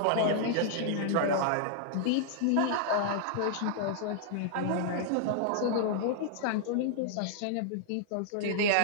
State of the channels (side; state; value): both; different; correlation -0.01